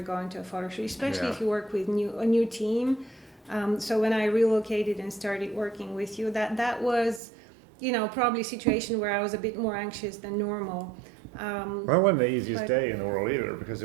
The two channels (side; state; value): left; drops out; at 7.2 s